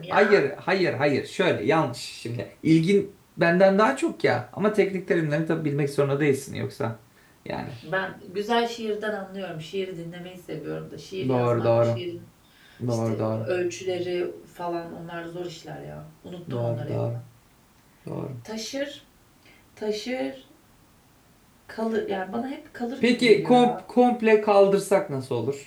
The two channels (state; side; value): identical; both; correlation 1.00